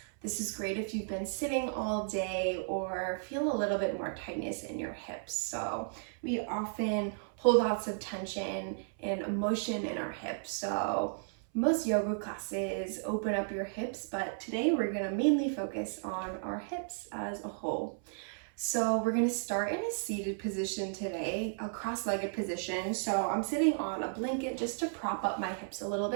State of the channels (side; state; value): left; silent; 55 dB below the other